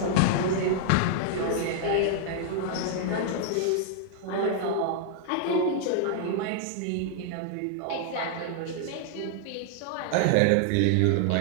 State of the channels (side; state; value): both; different; correlation -0.01